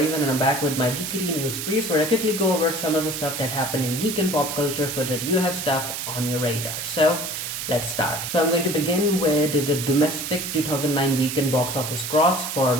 and I'm back with my Geekiary News Briefs where I quickly go over some of the stuff that happened in geek and pop culture so that you have stuff on your radar. So let's start. So I'm going to begin with the domestic 2009 weekend box office gross for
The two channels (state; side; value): noise; right; hiss, 5 dB below the sound